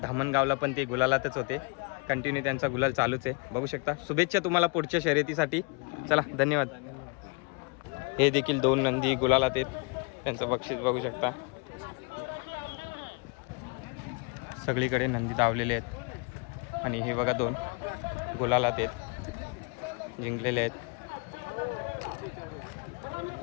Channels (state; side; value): quieter; right; 31.4 dB